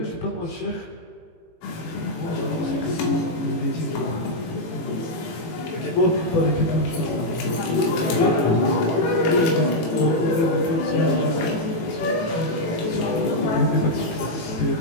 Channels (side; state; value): right; late; 18 ms